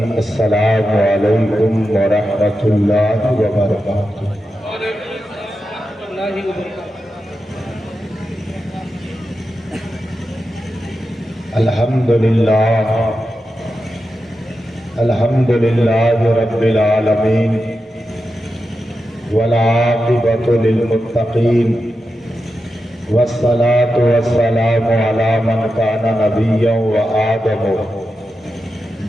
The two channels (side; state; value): both; normal; correlation 0.89